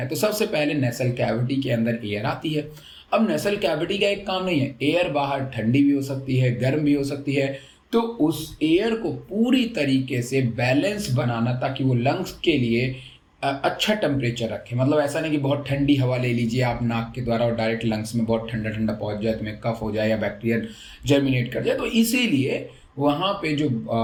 तो सबसे पहले नेसल कैविटी के अंदर एयर आती है। अब नेसल कैविटी का एक काम नहीं है, एयर बाहर ठंडी भी हो सकती है, गर्म भी हो सकती है, तो उस एयर को पूरी तरीके से बैलेंस बनाना ताकि वो लंग्स के लिए अच्छा टेम्परेचर रखें। मतलब ऐसा नहीं कि बहुत ठंडी हवा ले लीजिए आप नाक के द्वारा और डायरेक्ट लंग्स में बहुत ठंडा ठंडा पहुंच जाए, तुम्हें कफ हो जाए या बैक्टीरिया जर्मिनेट कर जाए। तो इसीलिए वहाँ पे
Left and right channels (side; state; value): both; identical; correlation 1.00